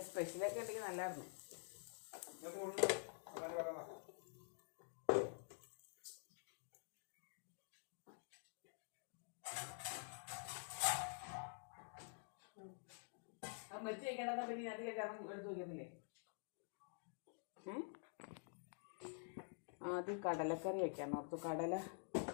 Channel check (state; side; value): silent; right; digital silence